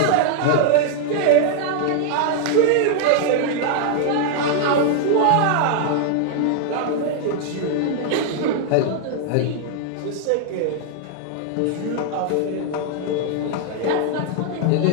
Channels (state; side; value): different; both; correlation -0.01